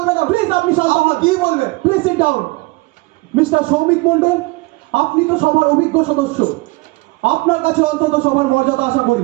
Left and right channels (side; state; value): left; quieter; 23.7 dB